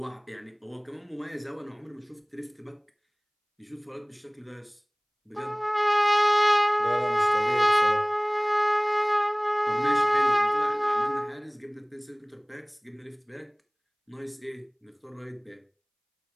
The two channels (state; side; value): identical; both; correlation 1.00